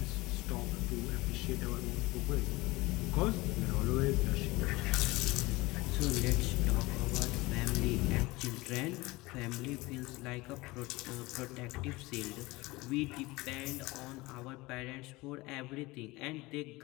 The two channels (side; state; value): right; quieter; 21.6 dB